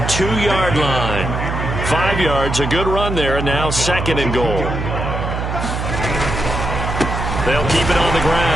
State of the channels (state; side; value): noise; right; hum, 3 dB below the sound